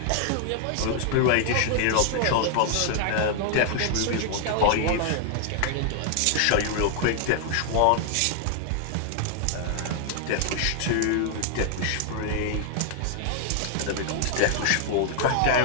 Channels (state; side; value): different; both; correlation 0.00